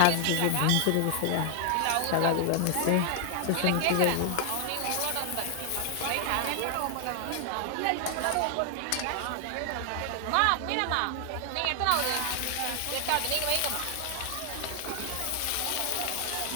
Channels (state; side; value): different; both; correlation 0.00